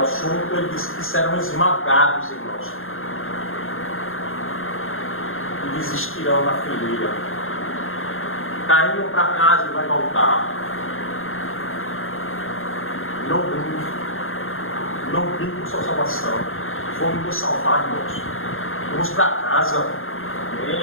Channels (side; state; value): right; late; 0.60 ms